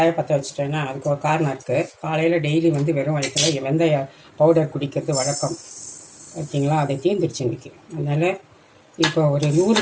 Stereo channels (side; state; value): both; identical; correlation 1.00